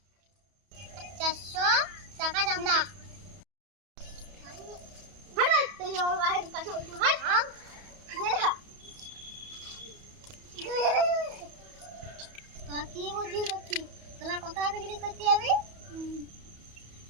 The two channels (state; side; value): late; left; 31 ms